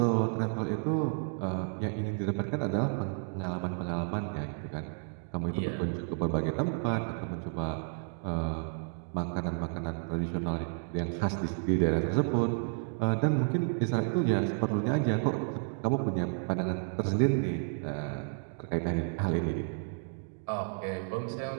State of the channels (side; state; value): left; silent; 57 dB below the other